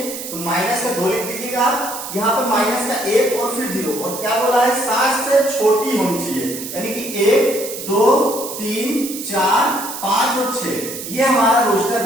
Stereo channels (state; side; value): noise; right; hiss, 9 dB below the sound